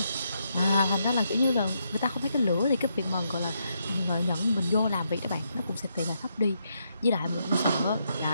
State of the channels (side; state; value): both; inverted; correlation -0.79